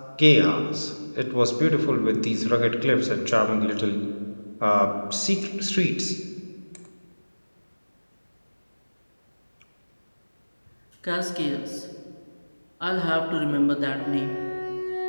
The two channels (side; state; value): both; inverted; correlation -1.00